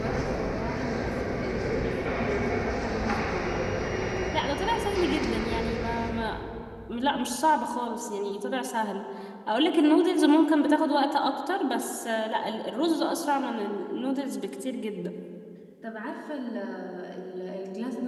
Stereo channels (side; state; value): both; identical; correlation 1.00